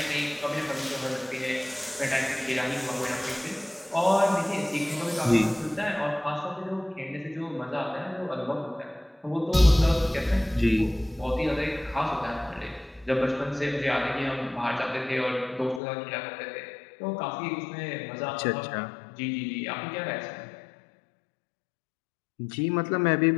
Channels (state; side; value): drops out; right; at 15.8 s